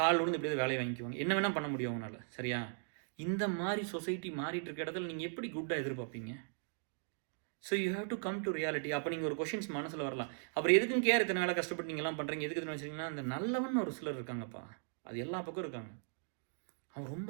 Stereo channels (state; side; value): silent; left; digital silence